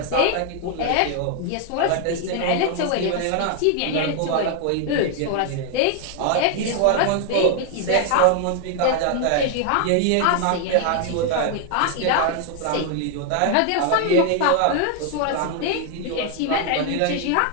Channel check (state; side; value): different; both; correlation 0.00